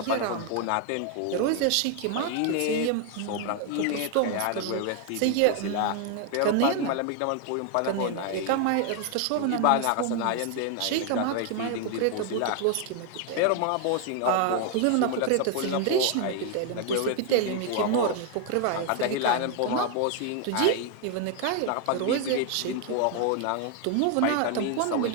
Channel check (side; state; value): both; different; correlation 0.00